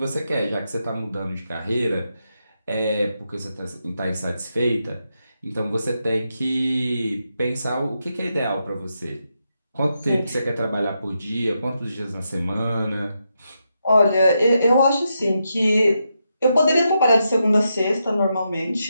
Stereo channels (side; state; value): both; inverted; correlation -0.84